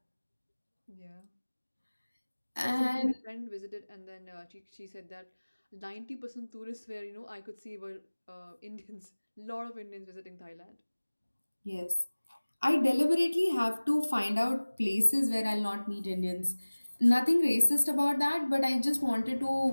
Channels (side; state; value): both; inverted; correlation -1.00